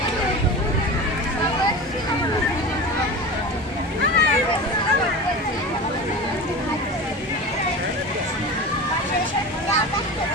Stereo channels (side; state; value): both; normal; correlation 0.30